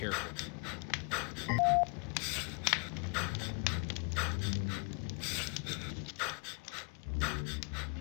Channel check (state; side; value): quieter; right; 35.9 dB